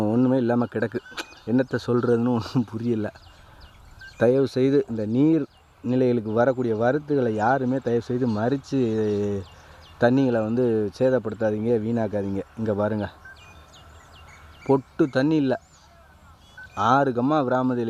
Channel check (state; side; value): identical; both; correlation 1.00